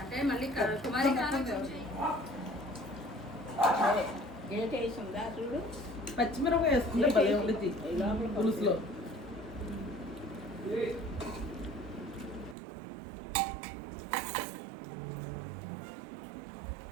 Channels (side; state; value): left; drops out; at 12.6 s